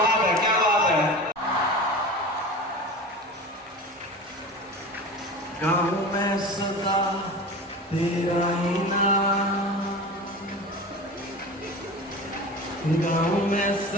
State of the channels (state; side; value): normal; both; correlation 0.33